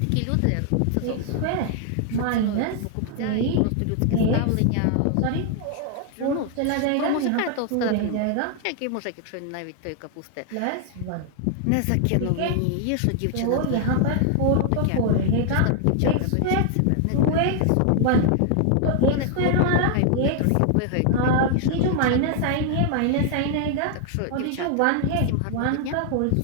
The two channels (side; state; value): both; different; correlation 0.00